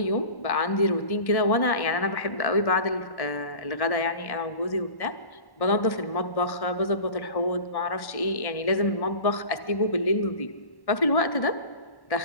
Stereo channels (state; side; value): late; right; 1.1 ms